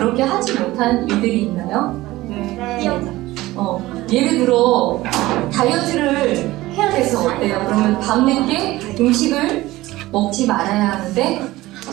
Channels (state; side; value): quieter; left; 17.9 dB